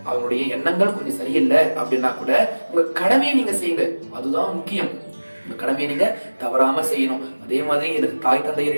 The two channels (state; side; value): inverted; both; correlation -1.00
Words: அவங்களுடைய எண்ணங்கள் கொஞ்சம் சரியில்லை அப்படின்னா கூட உங்க கடமையை நீங்க செய்யுங்க. அதுதான் முக்கியம். உங்க கடமையை நீங்க தவறாம செய்யணும். அதே மாதிரி எனக்கு தாய் தந்தையர்